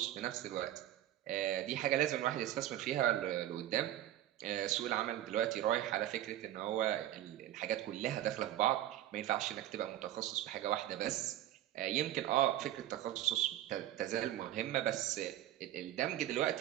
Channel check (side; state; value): left; quieter; 13.1 dB